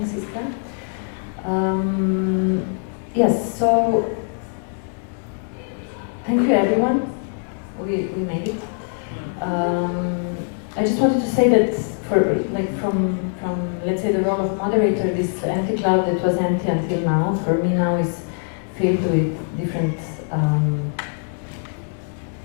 Iska. Yes, so thank you everyone. We made it. I just wanted to say that from let's say the role of moderator, this empty cloud that was empty until now, for me now is filled with different.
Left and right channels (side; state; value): right; silent; 59 dB below the other